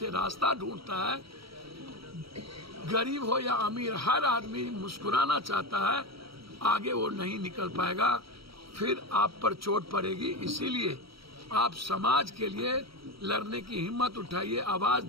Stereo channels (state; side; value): late; left; 0.75 ms